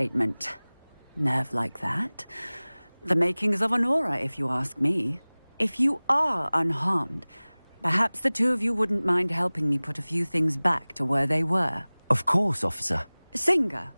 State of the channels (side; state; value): both; inverted; correlation -1.00